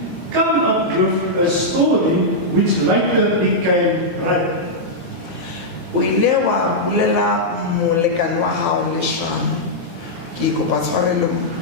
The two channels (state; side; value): late; left; 22 ms